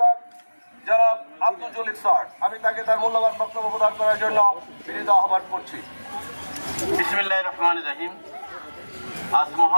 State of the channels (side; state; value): both; inverted; correlation -1.00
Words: জনাব আব্দুল জলিল স্যার। আমি তাকে তার মূল্যবান বক্তব্য প্রদান করার জন্য বিনীত আহ্বান করছি। বিসমিল্লাহির রহমানির রহিম। আজ